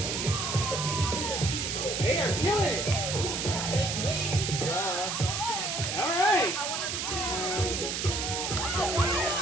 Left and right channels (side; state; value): right; noise; hiss, 2 dB below the sound